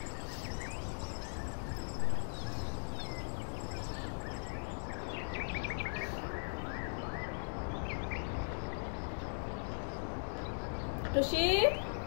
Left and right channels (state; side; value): silent; right; digital silence